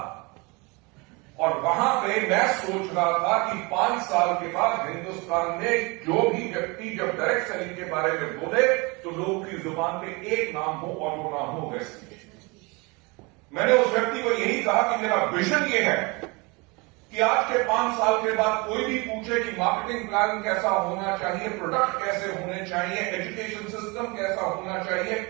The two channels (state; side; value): quieter; left; 27.4 dB